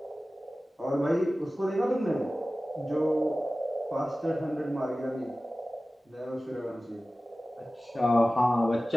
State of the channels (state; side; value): normal; both; correlation 0.96